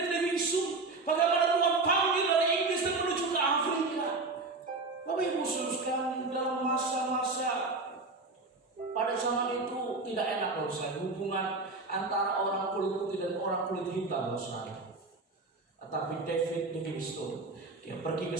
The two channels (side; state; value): left; quieter; 3.5 dB